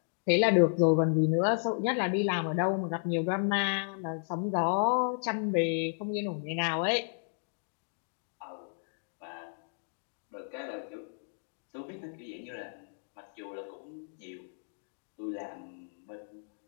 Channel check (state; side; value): silent; right; digital silence